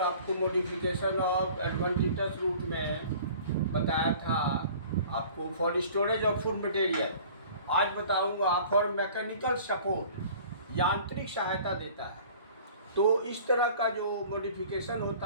मॉडिफिकेशन ऑफ एडवेंटिटस रूट में बताया था आपको for storage of food material. आज बताऊँगा फॉर मैकेनिकल सपोर्ट, यांत्रिक सहायता देता है। तो इस तरह का जो मॉडिफिकेशन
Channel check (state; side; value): inverted; both; correlation -0.47